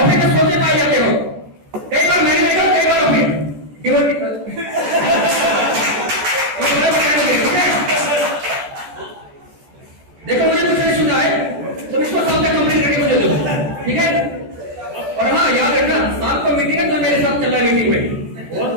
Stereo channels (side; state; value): left; late; 14 ms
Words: में सोते पाए जाते हो। कई बार मैंने देखा, कई बार ऑफिस देखो मुझे कुछ नहीं सुनना है, तुम इसको सामने कंप्लीट करके मुझे दो, ठीक है? और हाँ याद रखना, शाम को मीटिंग है तो मेरे साथ चलना मीटिंग में,